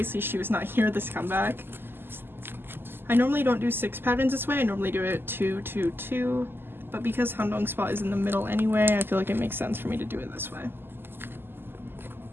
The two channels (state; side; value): late; left; 0.10 ms